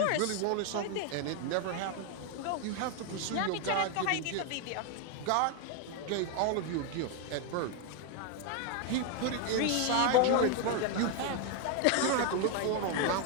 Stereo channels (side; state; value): both; different; correlation 0.01